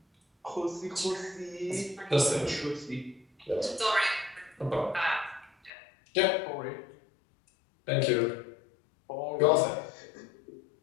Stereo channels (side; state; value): right; drops out; at 5.7 s